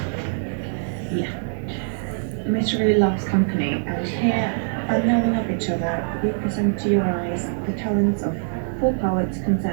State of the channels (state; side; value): silent; left; digital silence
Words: Yeah. Mystery loves company, and here, unknowing of each other, we present to your eyes the talents of 4 poets